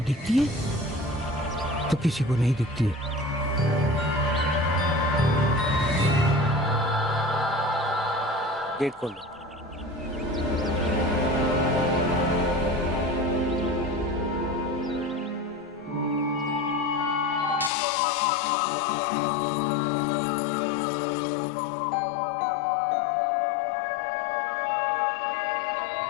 है तो किसी को नहीं दिखती है। गेट खोल दो।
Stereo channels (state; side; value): drops out; right; at 17.7 s